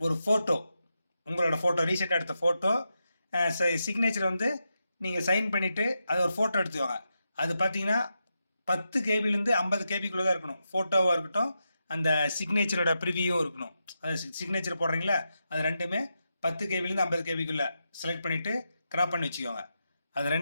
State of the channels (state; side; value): inverted; both; correlation -0.87